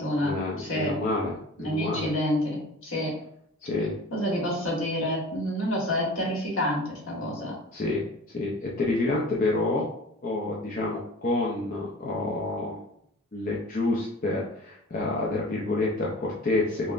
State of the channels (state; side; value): normal; both; correlation 0.41